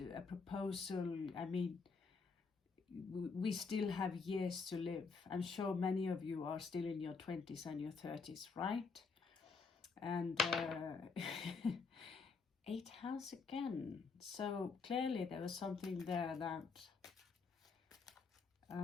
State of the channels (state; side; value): quieter; right; 4.8 dB